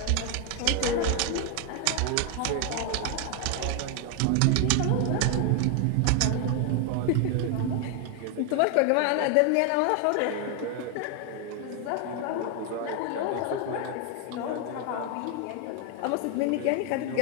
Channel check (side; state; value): both; different; correlation 0.01